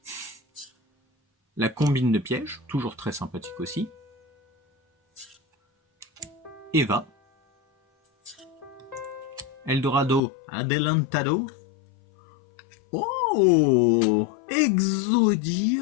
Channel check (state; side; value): drops out; right; at 10.2 s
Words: La combine de pièges, toujours très sympathique aussi. Eva. Eldorado, Adelantado. Oh,